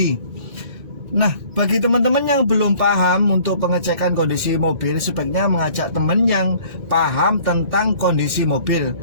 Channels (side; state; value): left; late; 1.3 ms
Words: Nah, bagi teman-teman yang belum paham untuk pengecekan kondisi mobil, sebaiknya mengajak teman yang paham tentang kondisi mobil,